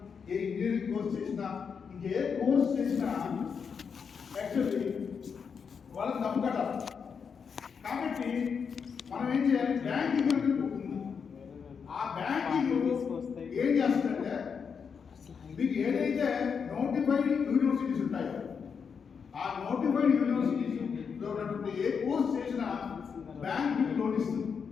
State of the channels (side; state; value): right; quieter; 6.3 dB